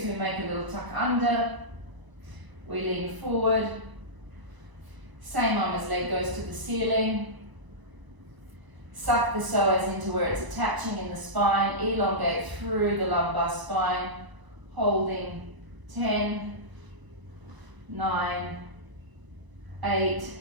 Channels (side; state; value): left; late; 1.0 ms